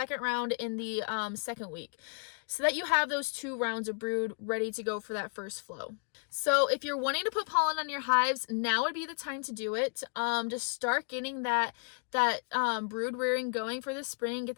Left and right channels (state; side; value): quieter; right; 36.8 dB